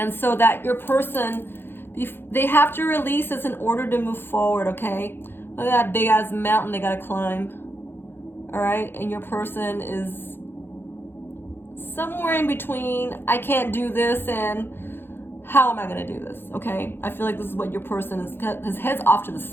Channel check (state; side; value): late; right; 0.10 ms